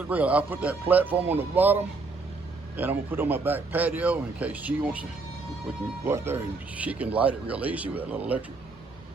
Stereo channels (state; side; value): quieter; left; 3.8 dB